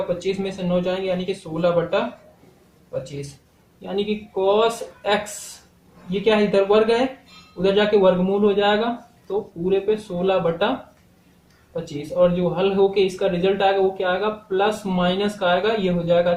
25 में से 9 जाएंगे, यानी कि 16/25, यानी कि कॉस एक्स, ये क्या है, इधर वर्ग है, उधर जाके वर्गमूल हो जाएगा, तो पूरे पे 16/25। और जो हल होके इसका रिजल्ट आएगा वो क्या आएगा, प्लस माइनस का आएगा, ये हो जाएगा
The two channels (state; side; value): identical; both; correlation 1.00